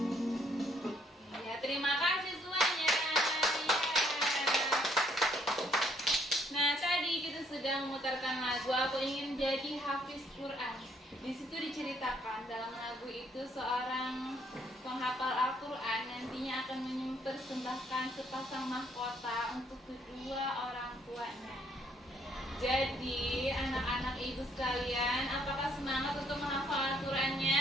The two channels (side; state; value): both; normal; correlation 0.67